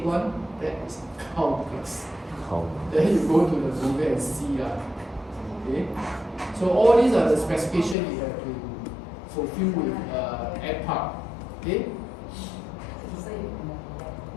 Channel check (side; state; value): right; drops out; at 8.0 s